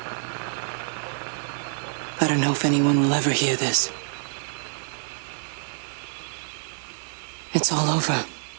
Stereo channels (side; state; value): left; silent; digital silence